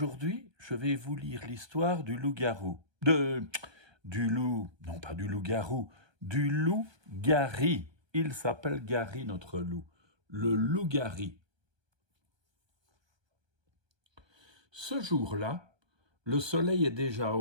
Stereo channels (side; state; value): left; late; 1.2 ms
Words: je vais vous lire l'histoire du loup-garou. Du loup, non pas du loup-garou, du loup Gary. Il s'appelle Gary, notre loup. Le loup Gary. Ce jour-là, le soleil est déjà